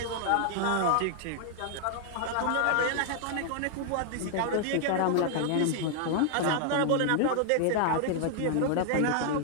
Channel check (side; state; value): both; different; correlation 0.00